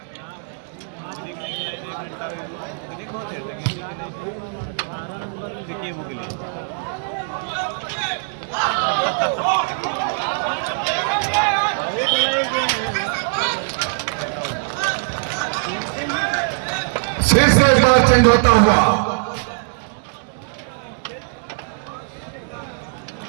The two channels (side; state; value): left; silent; digital silence